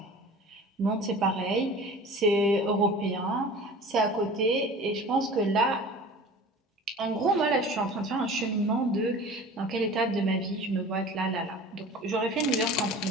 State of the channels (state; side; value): normal; both; correlation 0.40